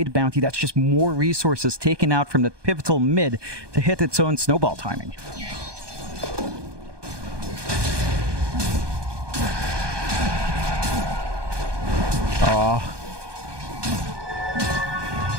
the Bounty, that's just more resources taken out from the pivotal mid to hit its own snowball timing. Oh.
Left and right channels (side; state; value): left; late; 1.2 ms